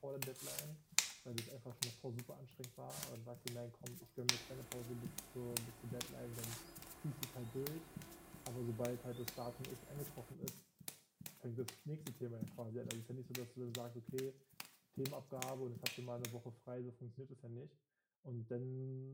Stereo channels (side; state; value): both; identical; correlation 1.00